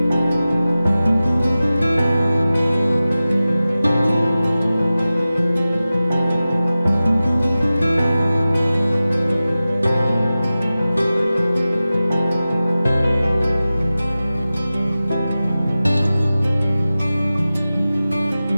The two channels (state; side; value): inverted; both; correlation -0.96